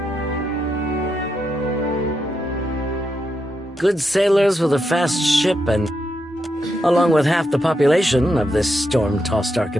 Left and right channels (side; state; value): both; normal; correlation 0.83